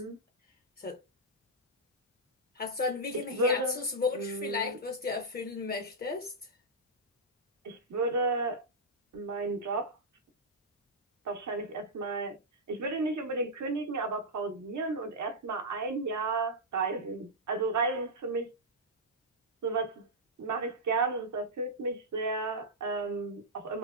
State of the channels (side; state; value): both; normal; correlation -0.08